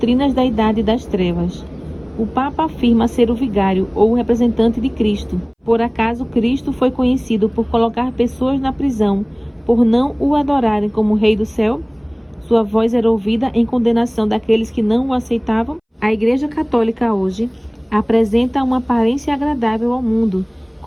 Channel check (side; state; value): both; identical; correlation 1.00